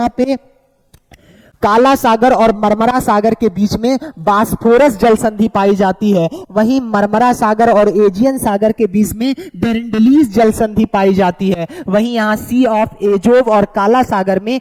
पे काला सागर और मरमरा सागर के बीच में बास्फोरस जल संधि पाई जाती है। वहीं मरमरा सागर और एजियन सागर के बीच में डेरेंडलीज जल संधि पाई जाती है। वहीं यहाँ सी ऑफ एजोव और काला सागर में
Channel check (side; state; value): both; identical; correlation 1.00